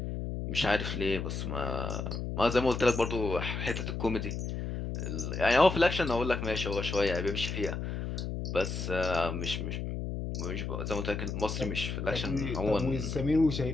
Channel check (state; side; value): noise; left; hum, 4 dB below the sound